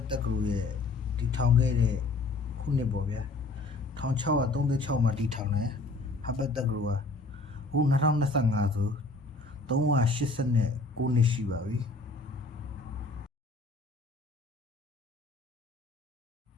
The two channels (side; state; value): right; quieter; 3.4 dB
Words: တက္ကသိုလ်ရဲ့တည်ထောင်ခဲ့တဲ့ခုနှစ်ပေါ့ဗျာ1636မှာတည်ထောင်တယ်ဟာဗတ်တက္ကသိုလ်ကအခု2025ဆို389နှစ်ရှိပါပြီ